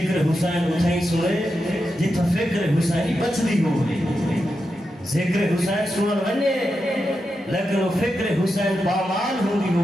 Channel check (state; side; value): normal; both; correlation 0.88